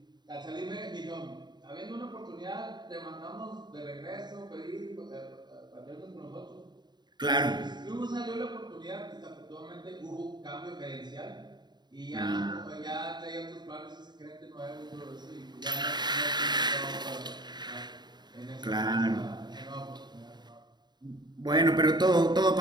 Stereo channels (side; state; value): left; late; 0.21 ms